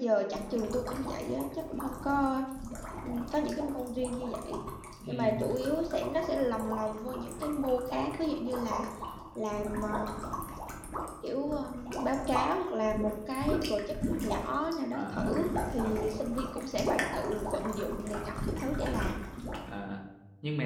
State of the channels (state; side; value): identical; both; correlation 1.00